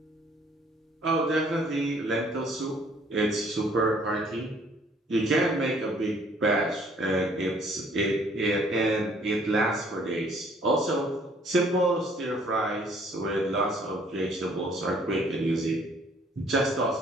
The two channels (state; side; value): normal; both; correlation 0.60